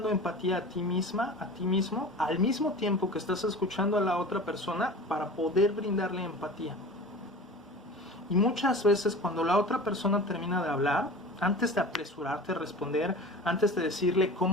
empatía a ti misma, a ti mismo, al mismo tiempo que estás escuchando a la otra persona para poder brindarle empatía. Y muchas veces cuando la otra persona termina de hablar, antes de apresurarte a responder, antes de decirle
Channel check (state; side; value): normal; both; correlation 0.36